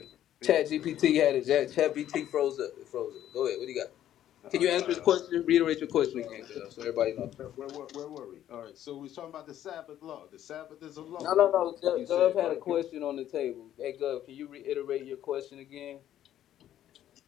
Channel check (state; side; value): quieter; right; 11.6 dB